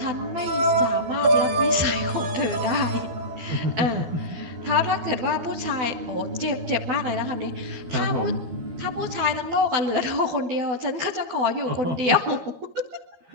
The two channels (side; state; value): left; late; 12 ms